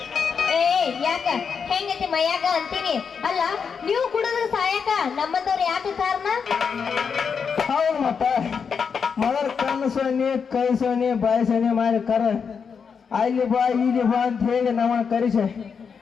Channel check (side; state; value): right; quieter; 6.2 dB